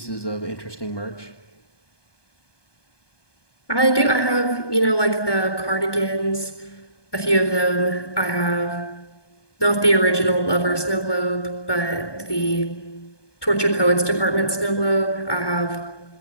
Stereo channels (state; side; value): late; right; 1.2 ms